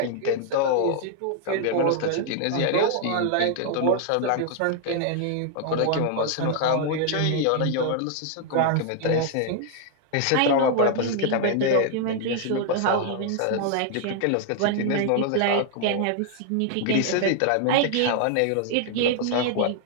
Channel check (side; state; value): both; different; correlation 0.00